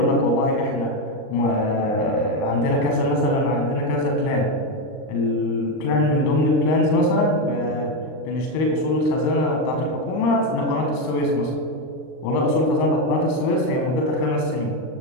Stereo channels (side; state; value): right; late; 39 ms